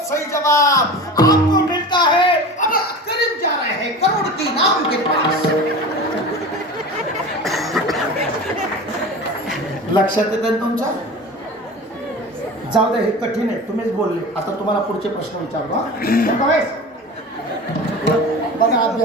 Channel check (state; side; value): normal; both; correlation 0.33